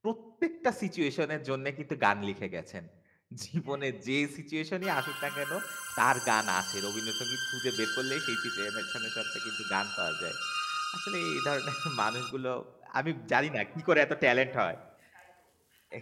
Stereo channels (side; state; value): both; identical; correlation 1.00